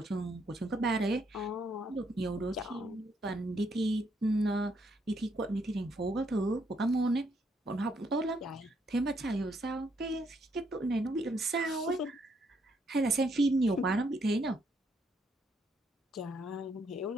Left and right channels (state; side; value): normal; both; correlation 0.73